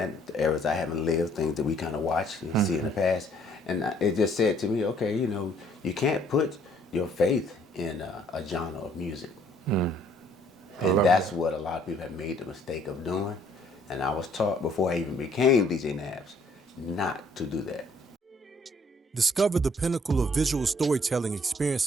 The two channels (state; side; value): normal; both; correlation 0.62